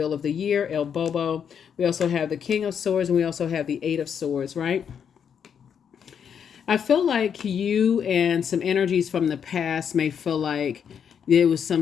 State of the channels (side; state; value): right; quieter; 7.7 dB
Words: of the Year, El Bobo. We also have the King of Swords, and we also have the Eight of Swords, right? I feel like you and some energies from the past may feel like there was some